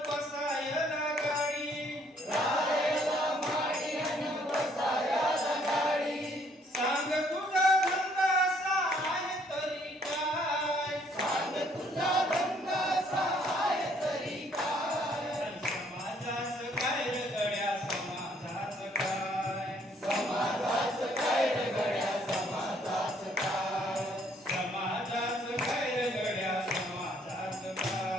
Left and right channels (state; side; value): normal; both; correlation 0.65